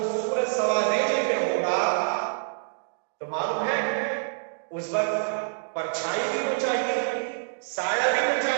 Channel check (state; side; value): silent; left; digital silence